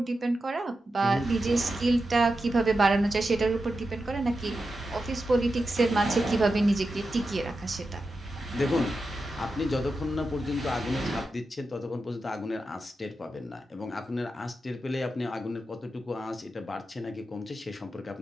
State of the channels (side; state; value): both; normal; correlation 0.90